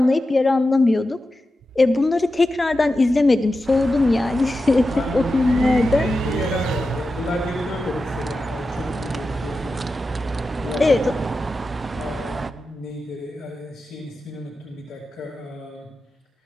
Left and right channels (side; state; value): both; normal; correlation 0.91